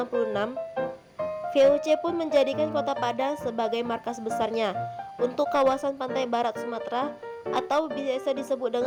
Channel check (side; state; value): both; identical; correlation 1.00